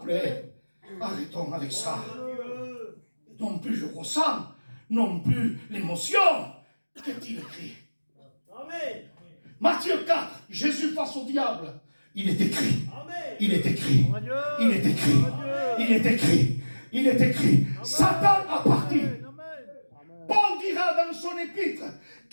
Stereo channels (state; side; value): inverted; both; correlation -1.00